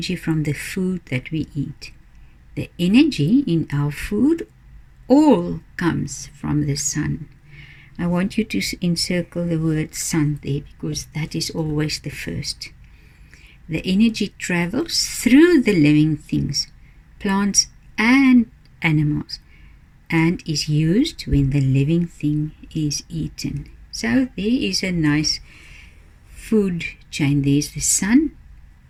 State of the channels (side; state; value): both; identical; correlation 1.00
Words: from the food that we eat. The energy in our food all comes from the sun. I want you to encircle the word sun there, because that is always the first. The energy travels through the living things, plants and animals, and is used when the living thing is eaten. So there is a nice food chain. There's the sun,